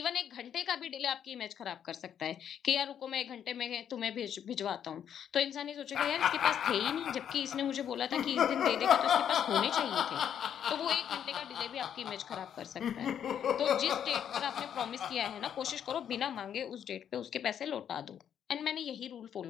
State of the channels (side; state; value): right; quieter; 9.0 dB